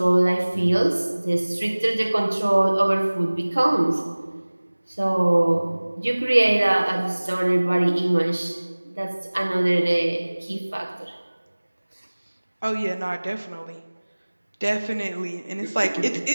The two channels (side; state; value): both; inverted; correlation -1.00